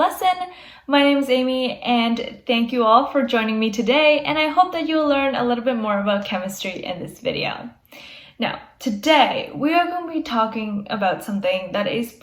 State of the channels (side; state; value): both; identical; correlation 1.00